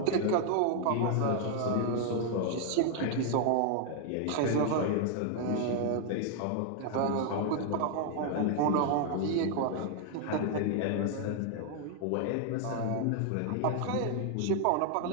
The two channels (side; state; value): both; different; correlation 0.00